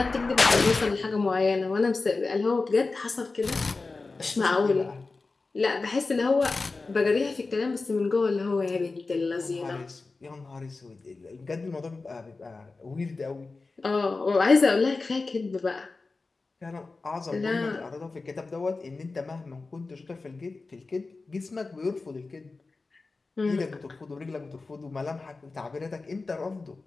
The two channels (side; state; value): right; quieter; 3.8 dB